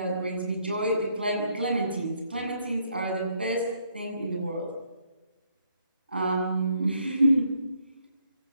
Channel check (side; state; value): both; inverted; correlation -0.72